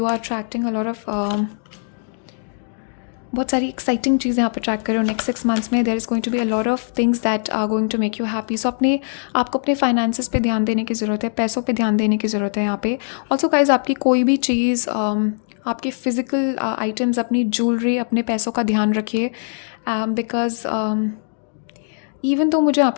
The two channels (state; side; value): silent; right; digital silence